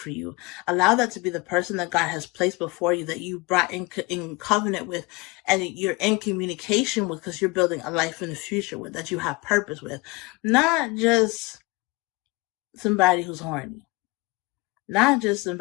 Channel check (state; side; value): quieter; right; 24.5 dB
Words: you. Allow that to be the person that God has placed before you, that you brought in covenant with, and you're in communication with, because you're building a life in the future with, that you have purpose with. Not just somebody who's horny. Not just